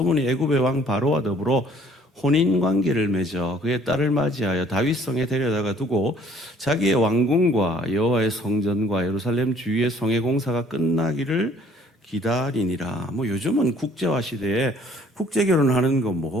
애굽의 왕 바로와 더불어 혼인관계를 맺어 그의 딸을 맞이하여 다윗성에 데려다가 두고 자기의 왕궁과 여호와의 성전과 예루살렘 주위의 성의 공사가 끝나기를 기다리니라. 요즘은 국제화 시대에 국제 결혼하는 거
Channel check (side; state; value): both; normal; correlation 0.58